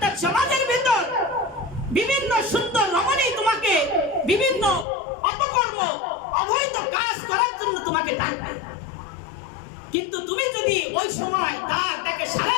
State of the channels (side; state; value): right; drops out; at 4.9 s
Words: সমাজের ভিতর বিভিন্ন সুন্দর রমণী তোমাকে বিভিন্ন অপকর্ম, অবৈধ কাজ করার জন্য তোমাকে ডাকবে, কিন্তু তুমি যদি ওই সময় তাকে সাড়া